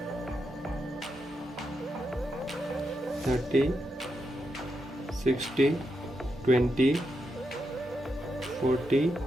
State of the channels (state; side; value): normal; both; correlation 0.84